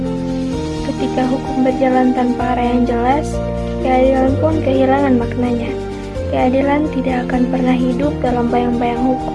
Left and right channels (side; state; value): both; identical; correlation 1.00